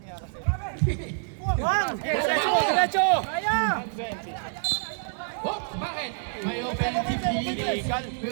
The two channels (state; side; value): silent; left; digital silence